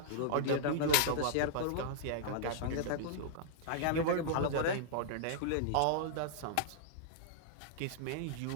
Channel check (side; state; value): both; different; correlation -0.01